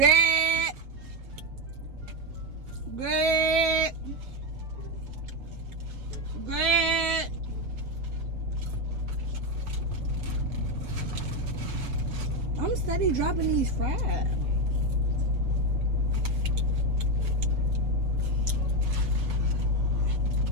Greg. Greg. I'm steady dropping these fries.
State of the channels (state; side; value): late; left; 7.2 ms